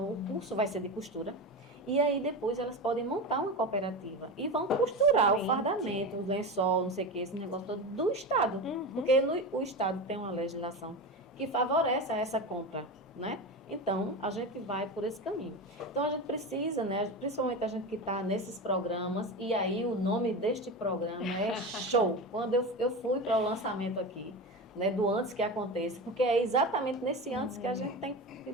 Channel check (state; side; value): normal; both; correlation 0.23